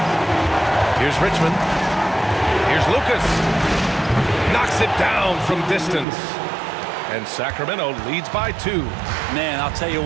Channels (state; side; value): drops out; left; at 6.1 s